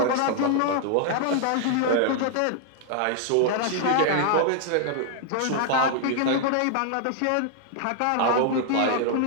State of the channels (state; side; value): different; both; correlation 0.00